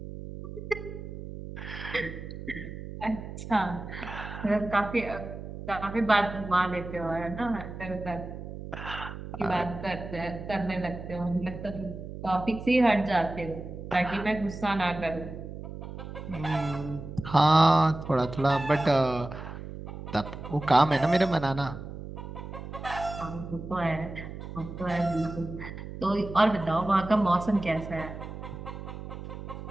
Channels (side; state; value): right; noise; hum, 10 dB below the sound